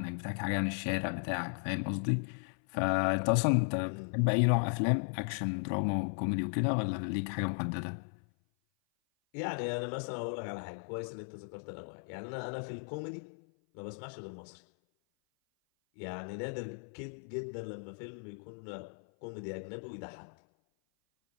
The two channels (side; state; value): right; silent; 54 dB below the other